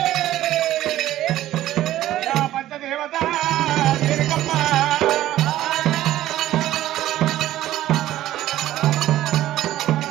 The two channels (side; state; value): left; quieter; 14.0 dB